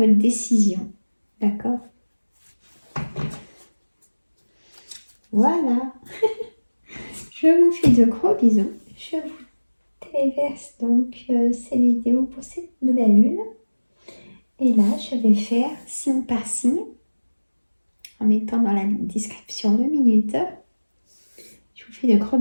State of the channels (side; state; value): both; inverted; correlation -1.00